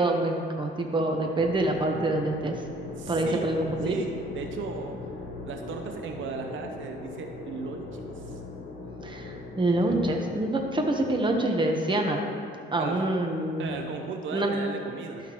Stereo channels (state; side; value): normal; both; correlation 0.60